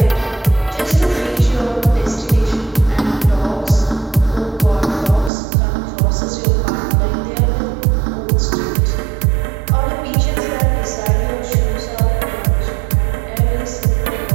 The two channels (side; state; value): left; drops out; at 5.3 s